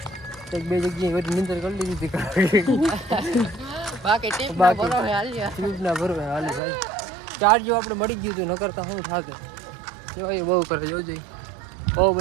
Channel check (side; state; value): left; drops out; at 6.6 s